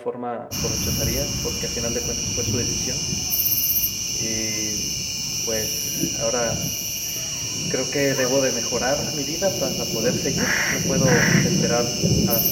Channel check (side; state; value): both; identical; correlation 1.00